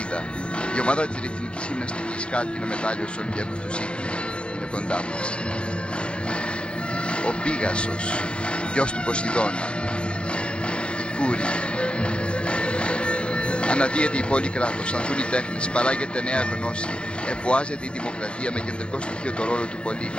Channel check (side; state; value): right; late; 0.057 ms